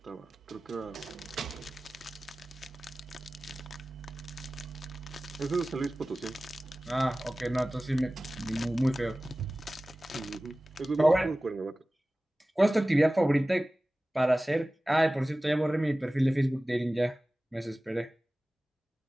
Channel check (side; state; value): both; normal; correlation 0.97